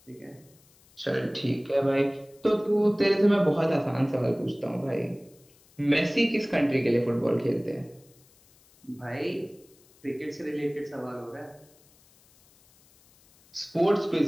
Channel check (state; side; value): noise; left; hiss, 29 dB below the sound